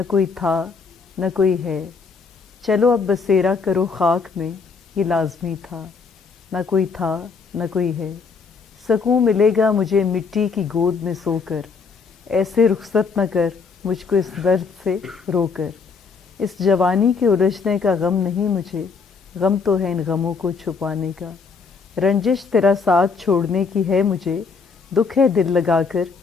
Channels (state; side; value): quieter; right; 5.0 dB